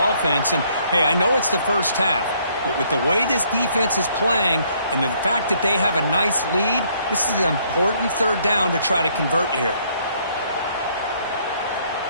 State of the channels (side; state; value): both; inverted; correlation -0.66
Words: And, hey, I know it's the first half, but with the way this defense is playing and the fact that they have a nice lead, this is an important 3rd down to try to convert here.